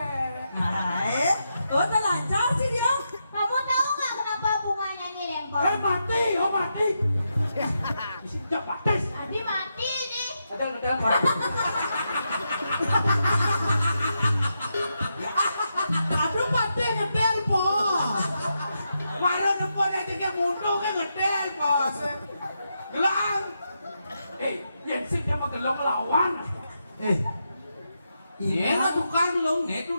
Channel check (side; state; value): both; inverted; correlation -0.84